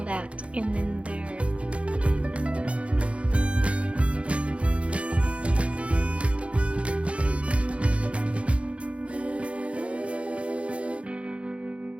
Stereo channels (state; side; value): late; left; 0.061 ms